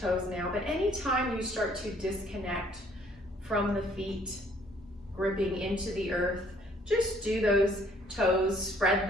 now, but anytime you start to disconnect from the feet, gripping into the earth, just do those toes, spread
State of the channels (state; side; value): normal; both; correlation 0.61